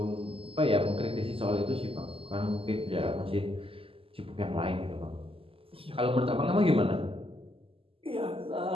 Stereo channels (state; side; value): late; left; 0.26 ms